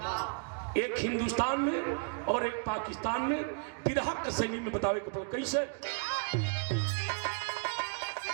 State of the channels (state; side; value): quieter; left; 39.4 dB